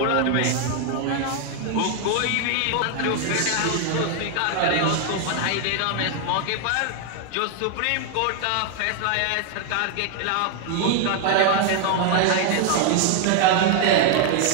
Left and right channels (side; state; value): both; different; correlation 0.00